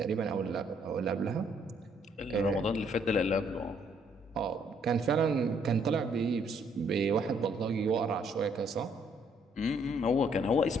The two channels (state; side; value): normal; both; correlation 0.68